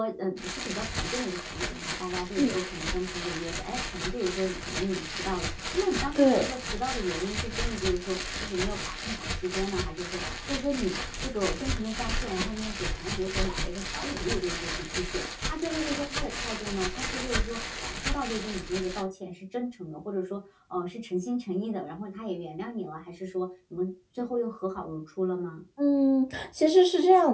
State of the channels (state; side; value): identical; both; correlation 1.00